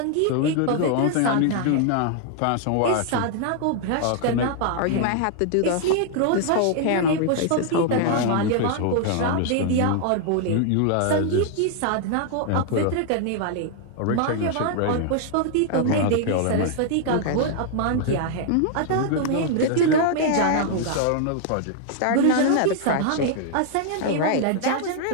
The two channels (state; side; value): different; both; correlation 0.00